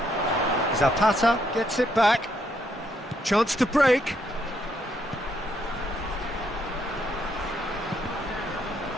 Zapata gets it back. Chance to break.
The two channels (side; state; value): both; normal; correlation 0.74